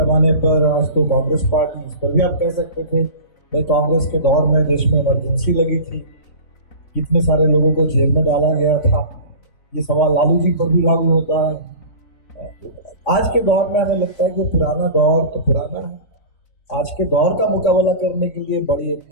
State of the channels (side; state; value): right; late; 3.8 ms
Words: पर आज तो कांग्रेस पार्टी, इस पर भी आप कह सकते थे भाई कांग्रेस के दौर में देश में इमरजेंसी लगी थी, कितने सारे लोगों को जेल में डाला गया था, ये सवाल लालू जी पर भी लागू होता है। आज के दौर में हमें लगता है कि पुराना दौर तो पुराना है, आज के दौर का मुकाबला करने के लिए बड़ी